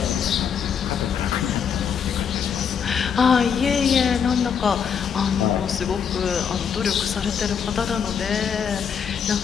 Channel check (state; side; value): quieter; right; 7.2 dB